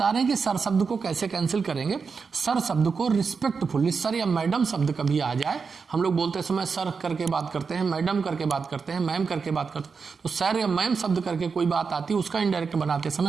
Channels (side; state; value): left; quieter; 5.3 dB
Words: रहे हैं कि सर शब्द को कैसे कैंसिल करेंगे। सर शब्द को रिस्पेक्टफुली, सर या मैडम शब्द कभी आ जाए, हम लोग बोलते समय सर करके बात करते हैं, मैडम करके बात करते हैं, मैम करके बात करते हैं, तो सर या मैम शब्द करके कोई बात आती है उसका इनडायरेक्ट बनाते समय